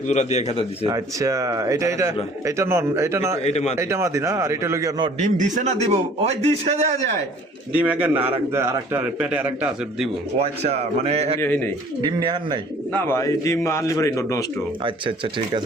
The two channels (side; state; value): both; normal; correlation 0.53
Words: জোড়া দিয়ে খেতা দিছে আচ্ছা এটা নন এটা না এটা মাদি। এটা মাদি না আর এটা লগিয়া ন ডিম দিছে না দিব ওই দিছে দেয়া যায় ডিম এক না আরেকটা পেটে আরেকটা আছে দিব ও আচ্ছা মানে এই নেই ডিম নেহান নাই না ভাই ডিম আনলি পরে নষ্ট আচ্ছা আচ্ছা ঠিক